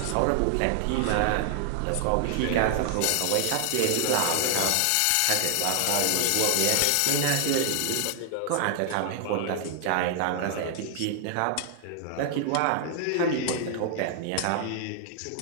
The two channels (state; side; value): different; both; correlation 0.00